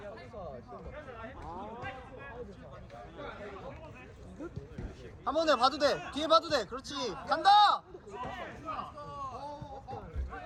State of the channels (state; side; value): identical; both; correlation 1.00